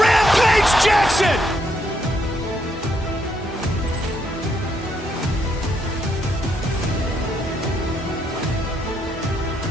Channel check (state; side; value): normal; both; correlation 0.76